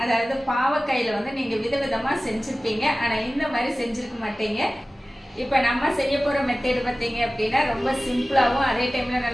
அதாவது பாவக்காயில் வந்து நீங்கள் விதவிதமாக செஞ்சுருப்பீங்க, ஆனால் இந்த மாதிரி செஞ்சுருக்க மாட்டீங்க. இப்போ நம்ம செய்ய போகிற மெத்தேடு பார்த்தீங்க அப்படின்னா ரொம்ப சிம்பிளாகவும் அதே டைமில்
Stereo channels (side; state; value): both; normal; correlation 0.96